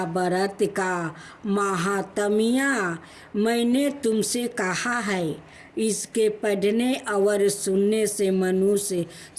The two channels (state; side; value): identical; both; correlation 1.00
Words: व्रत का महात्म्य मैंने तुमसे कहा है। इसके पढ़ने और सुनने से मनुष्य